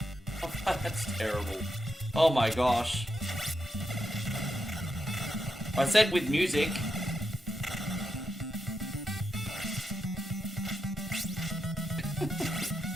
That's terrible. Oh my gosh. I said with music.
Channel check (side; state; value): both; normal; correlation 0.85